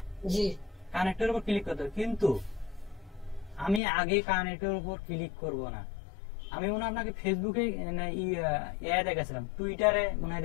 জি। কানেক্টের উপর ক্লিক করতে হবে, কিন্তু আমি আগে কানেক্টের উপর ক্লিক করব না। আমি মনে হয় আপনাকে ফেসবুকে দেখাছিলাম, টুইটারে মনে হয়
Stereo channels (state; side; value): drops out; right; at 3.8 s